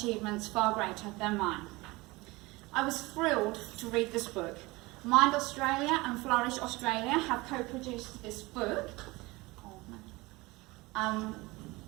far greater than mine. I was thrilled to read this book. Mind Australia and Flourish Australia have co-produced this book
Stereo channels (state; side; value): quieter; left; 22.3 dB